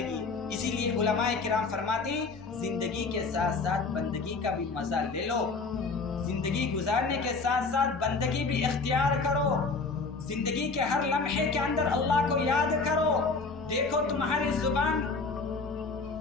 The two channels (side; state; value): right; quieter; 4.2 dB